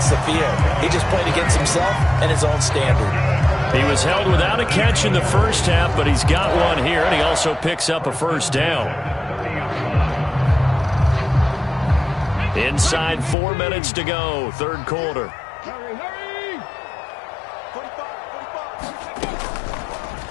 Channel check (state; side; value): drops out; right; at 13.4 s